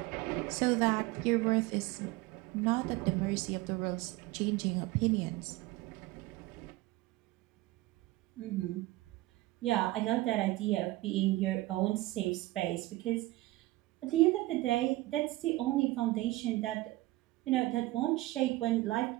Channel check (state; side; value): quieter; left; 18.7 dB